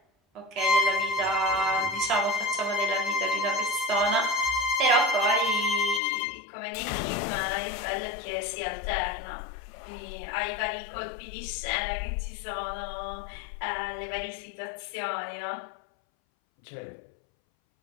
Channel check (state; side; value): drops out; right; at 6.0 s